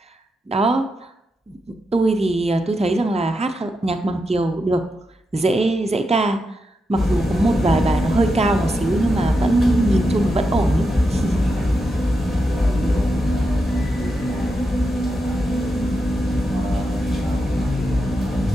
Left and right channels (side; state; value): both; normal; correlation 0.86